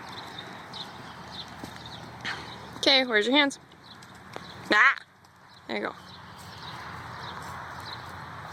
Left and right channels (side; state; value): both; identical; correlation 1.00